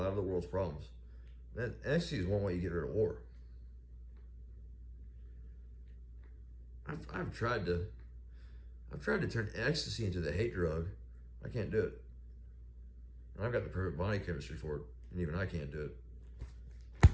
of the world's problems. That ecstasy is one way you get rid of war. I've tried to turn ecstasy into the hate drug. I can't do it. And I've got the perfect body chemistry for it, and even I can't do it.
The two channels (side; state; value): both; identical; correlation 1.00